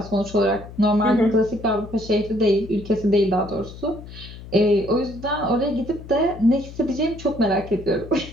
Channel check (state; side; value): noise; left; hum, 15 dB below the sound